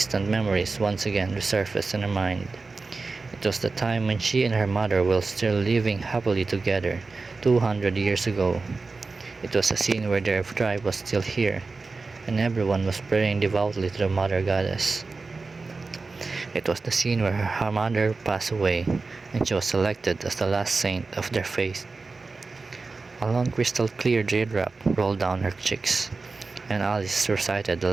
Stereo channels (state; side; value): quieter; left; 4.0 dB